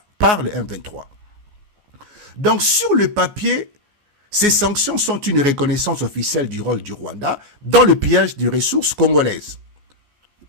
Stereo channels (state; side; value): late; left; 14 ms